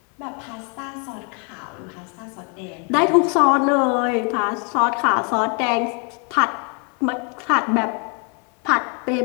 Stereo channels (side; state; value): right; quieter; 37.2 dB